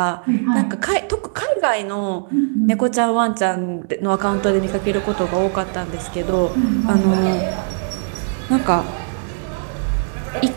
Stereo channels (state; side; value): silent; left; digital silence